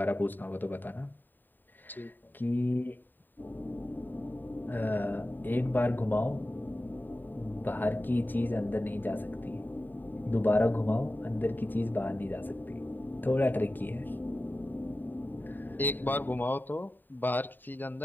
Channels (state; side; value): late; right; 0.091 ms